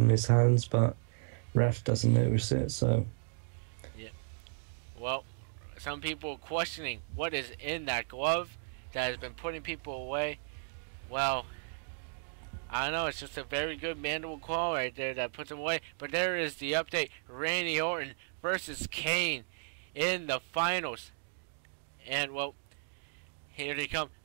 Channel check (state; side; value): silent; left; digital silence